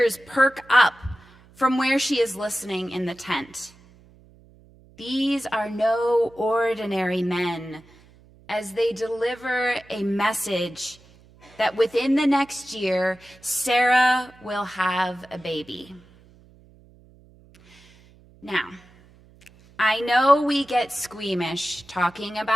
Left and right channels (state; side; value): noise; right; hum, 27 dB below the sound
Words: perk up from where she is listening in the tent. These are no ordinary men as they deliver a message that within the next year, Sarah will have a baby. Now, I know we get squeamish talking